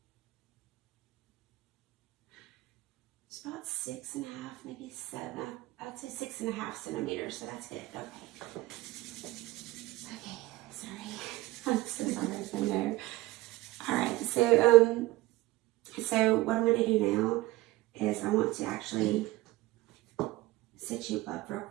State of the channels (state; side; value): quieter; left; 18.3 dB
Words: It's about 6.5, maybe 7. I'd say 6.5 centimeters, so that's good. Okay. Okay, sorry. I'm so sorry. I know. All right, so what I'm going to do now is I want to actually sit you up real